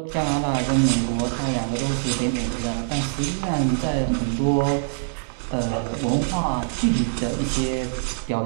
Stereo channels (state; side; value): silent; left; digital silence